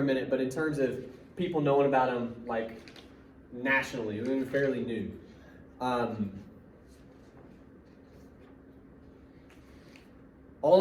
minute, but in terms of people knowing about them, like, nationally, it was fairly new. All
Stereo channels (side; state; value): both; identical; correlation 1.00